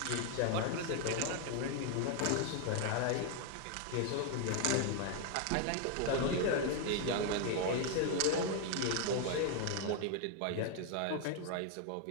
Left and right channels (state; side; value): different; both; correlation 0.00